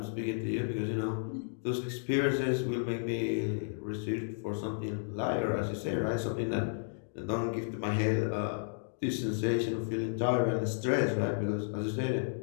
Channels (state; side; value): silent; right; digital silence